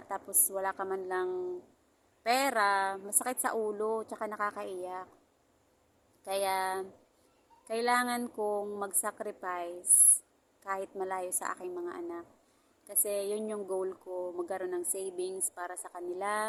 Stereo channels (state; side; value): identical; both; correlation 1.00